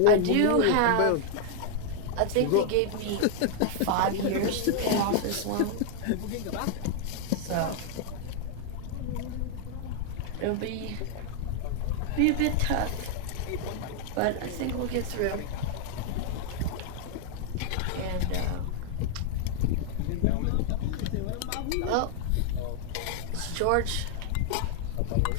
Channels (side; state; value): both; different; correlation 0.00